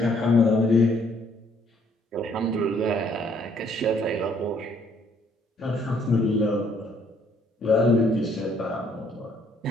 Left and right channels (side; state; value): both; normal; correlation 0.65